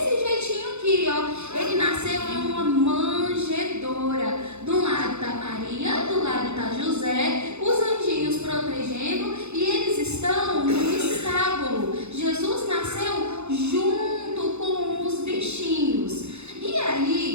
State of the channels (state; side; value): late; left; 0.81 ms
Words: jeitinho aqui, ó. Ele nasceu em uma manjedoura. Do lado tá Maria, do lado tá José, os anjinhos protegendo, e eles estão no estábulo. Jesus nasceu junto com os bichinhos. E